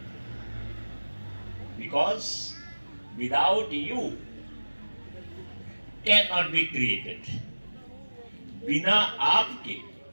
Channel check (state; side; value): inverted; both; correlation -1.00